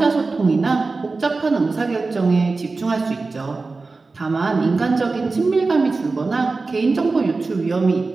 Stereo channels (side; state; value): left; quieter; 3.8 dB